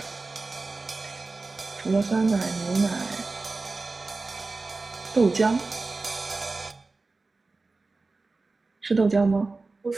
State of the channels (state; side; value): quieter; left; 3.7 dB